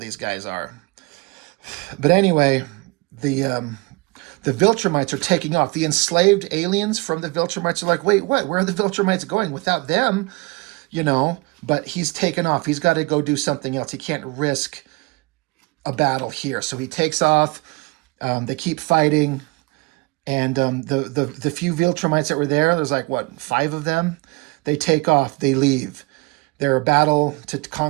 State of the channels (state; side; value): quieter; left; 25.7 dB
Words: guys are. But anyway, the Viltrumites are taking off. The enslaved aliens from the Viltrumites are like, wait, what? Where are the Viltrumites going? Without them, but he's taken off. He's got to go do something else. He can't risk a battle here. So he takes off. They keep fighting. And the few Viltrumites that were there, there's like, 5 of them? They take off. They leave. Their battle to